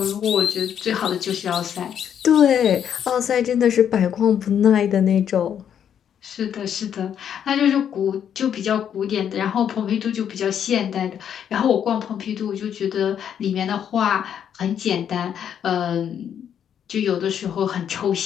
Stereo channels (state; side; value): quieter; right; 8.9 dB